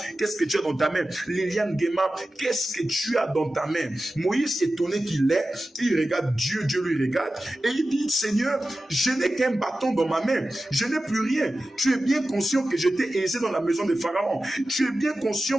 qu'est-ce que tu as dans ta main? Liliane Gema, qu'est-ce que tu as dans ta main? Moïse, étonné qu'il est, il regarde Dieu, Dieu lui regarde, et il dit, Seigneur, je n'ai qu'un bâton dans ma main, je n'ai plus rien. Tu es bien conscient que j'étais aisé dans la maison de Pharaon. Tu es bien conscient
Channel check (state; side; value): normal; both; correlation 0.94